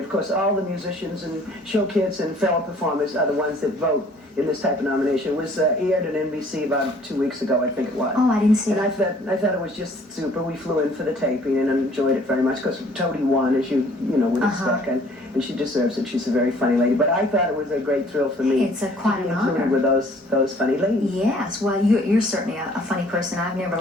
Of course, all the musicians and show kids and fellow performers are the ones that vote in this type of nomination. It was aired on NBC about 2 weeks ago, I think it was. Oh, I didn't see and that. I thought it was just super. We flew in for the taping and enjoyed it very much, because Toady won, as you know, with the stuck, and she deserves it. She's a very funny lady. But I thought it was a great thrill for me It's quite to be an included honor. with those funny ladies. Yes, well, you're certainly a funny person. I've never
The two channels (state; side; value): normal; both; correlation 0.57